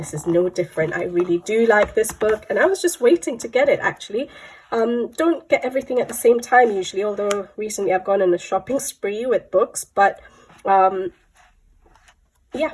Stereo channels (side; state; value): both; identical; correlation 1.00